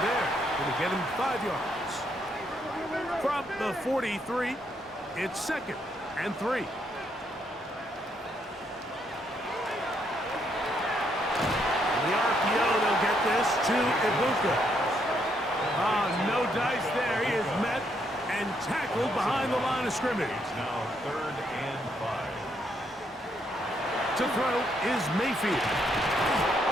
there. Going to get him 5 yards. From the 43, it's second and 3. The RPO, they'll get this to Ibuka. No dice there. He is met and tackled behind the line of scrimmage. Now third and 5. To throw is Mayfield.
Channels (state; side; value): normal; both; correlation 0.74